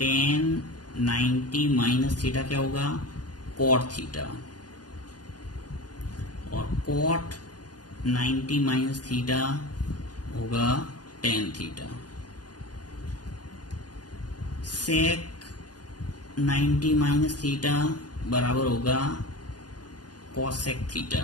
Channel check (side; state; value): right; late; 0.69 ms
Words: 90 माइनस थीटा क्या होगा, कॉट थीटा, और कॉट 90 माइनस थीटा होगा टेन थीटा। सेक 90 माइनस थीटा बराबर होगा कॉसेक थीटा,